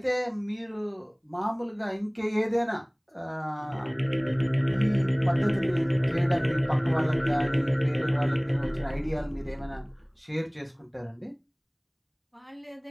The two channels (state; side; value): identical; both; correlation 1.00